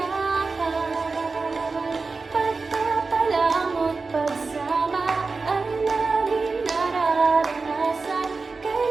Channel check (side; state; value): left; quieter; 4.1 dB